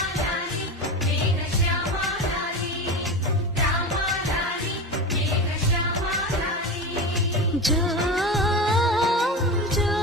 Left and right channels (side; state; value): both; normal; correlation 0.25